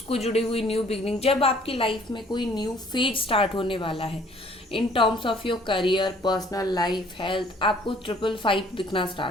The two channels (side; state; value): both; normal; correlation 0.58